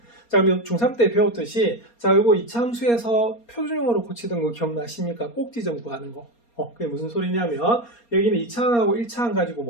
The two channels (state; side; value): late; right; 4.3 ms